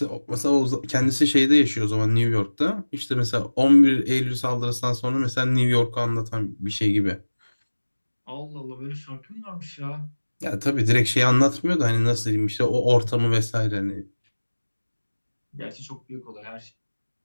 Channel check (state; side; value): inverted; both; correlation -1.00